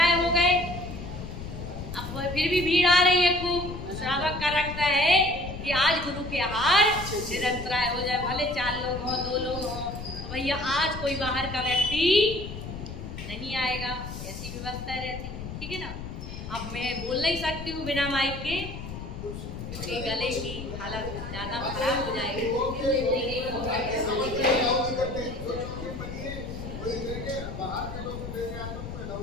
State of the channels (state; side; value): noise; left; rumble, 9 dB below the sound